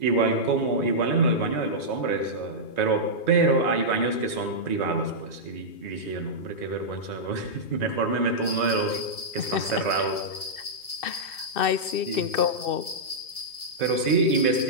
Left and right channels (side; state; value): right; late; 2.3 ms